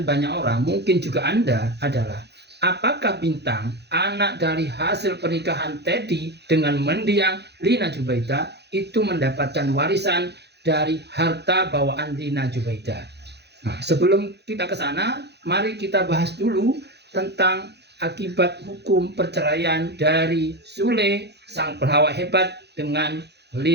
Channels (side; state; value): left; late; 0.49 ms